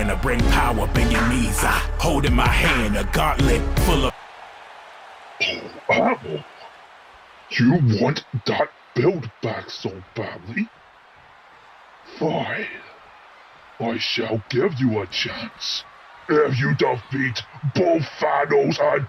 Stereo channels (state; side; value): identical; both; correlation 1.00